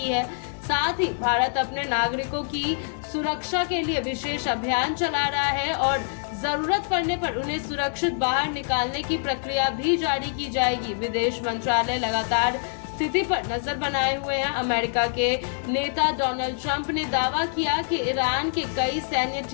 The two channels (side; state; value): right; silent; digital silence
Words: है। साथ ही भारत अपने नागरिकों की सुरक्षा के लिए विशेष अभियान चला रहा है और जरूरत पड़ने पर उन्हें सुरक्षित बाहर निकालने की प्रक्रिया भी जारी की जाएगी। विदेश मंत्रालय लगातार स्थिति पर नजर बनाए हुए हैं। अमेरिका के नेता डोनाल्ड ट्रंप ने दावा किया कि ईरान के कई सैन्य